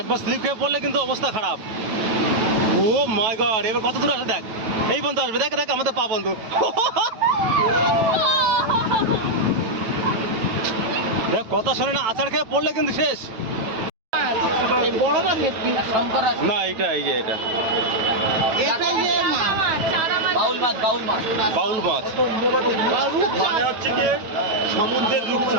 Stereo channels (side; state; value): left; late; 9.2 ms